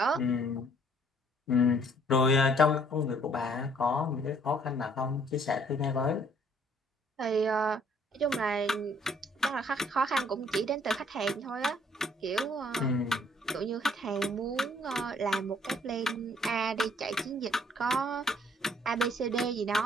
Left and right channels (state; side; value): normal; both; correlation 0.61